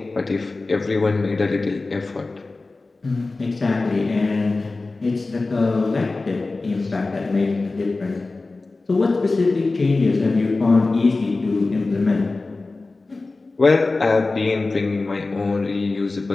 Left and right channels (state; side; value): quieter; right; 3.5 dB